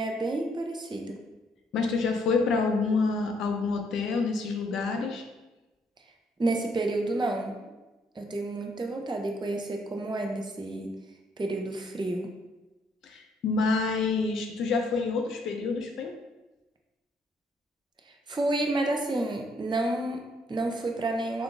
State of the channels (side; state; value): both; normal; correlation 0.70